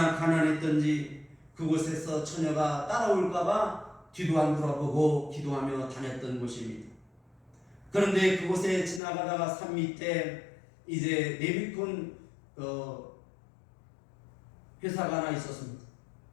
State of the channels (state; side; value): drops out; right; at 9.0 s